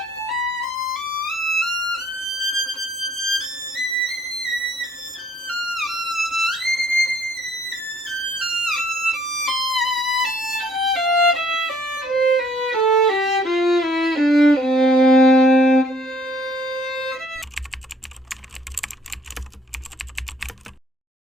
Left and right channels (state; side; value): normal; both; correlation 0.62